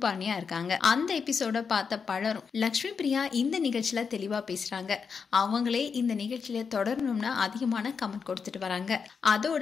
இருக்காங்க. அந்த எபிசோட பார்த்த பலரும் லக்ஷ்மி பிரியா இந்த நிகழ்ச்சியில தெளிவா பேசுறாங்க, அவங்களே இந்த நிகழ்ச்சியில தொடரணும்னு அதிகமான கமெண்ட் கொடுத்துட்டு வராங்க. அதோட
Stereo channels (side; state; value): right; quieter; 5.8 dB